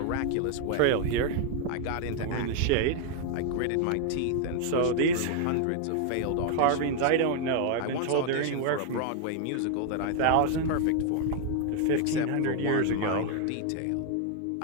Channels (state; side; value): different; both; correlation 0.00